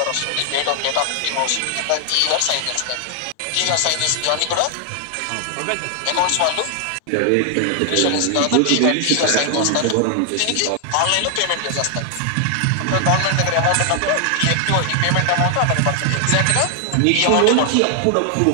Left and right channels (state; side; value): different; both; correlation 0.00